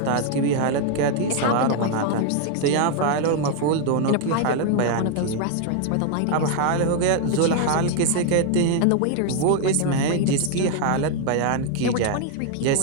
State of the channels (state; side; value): different; both; correlation 0.00